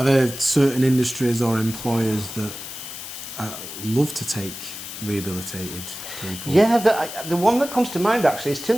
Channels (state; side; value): noise; left; hiss, 10 dB below the sound